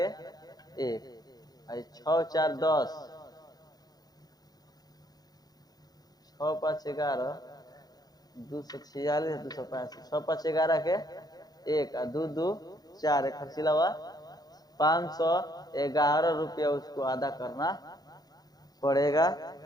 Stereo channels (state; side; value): late; right; 0.19 ms